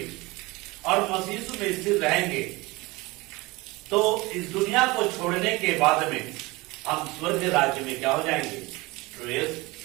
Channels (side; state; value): left; quieter; 22.7 dB